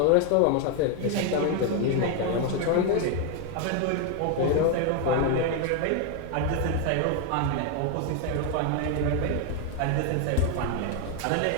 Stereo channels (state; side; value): different; both; correlation 0.01